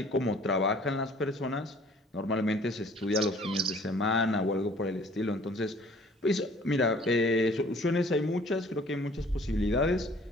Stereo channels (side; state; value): both; normal; correlation 0.54